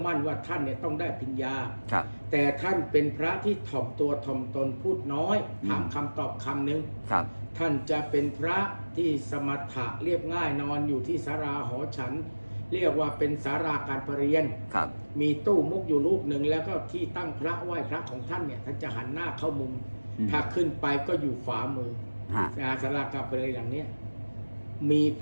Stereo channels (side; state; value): both; inverted; correlation -1.00